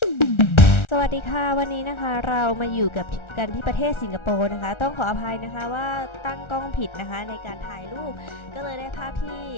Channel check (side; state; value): right; late; 1.4 ms